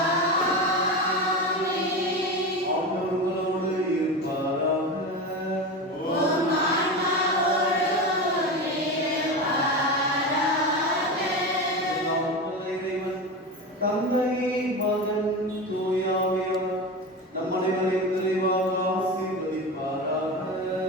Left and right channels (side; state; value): both; normal; correlation 0.23